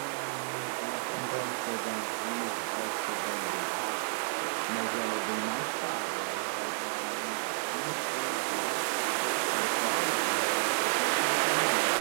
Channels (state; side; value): silent; left; digital silence